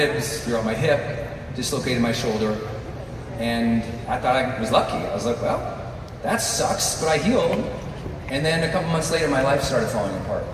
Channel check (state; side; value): identical; both; correlation 1.00